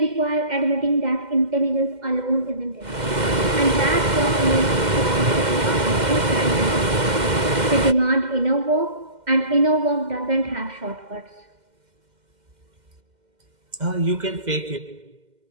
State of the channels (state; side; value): late; left; 2.1 ms